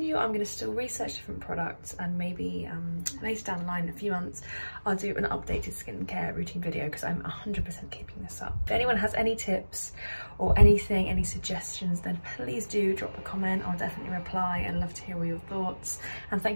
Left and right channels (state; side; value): inverted; both; correlation -1.00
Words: I'm going to still research different products, and maybe later down the line in a few months I'll do an updated skincare routine video, because I'm 100% keeping this up. If anyone has any tips or anything, any suggestions, then please do drop a comment. I'll definitely reply and love to hear all your thoughts. And